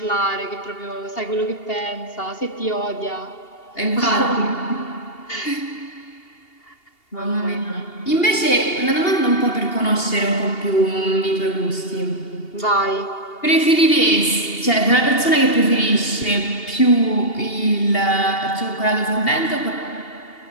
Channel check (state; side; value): late; right; 2.8 ms